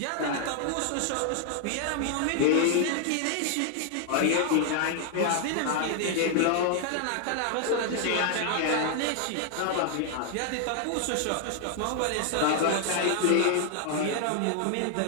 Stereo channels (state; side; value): different; both; correlation 0.00